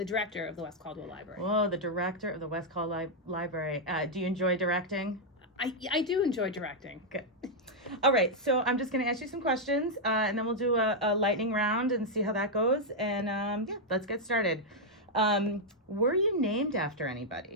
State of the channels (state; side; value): normal; both; correlation -0.03